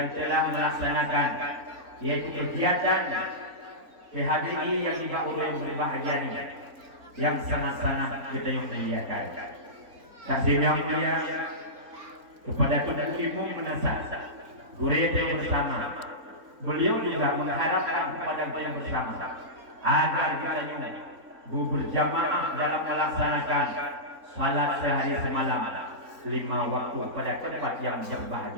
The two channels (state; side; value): late; left; 4.0 ms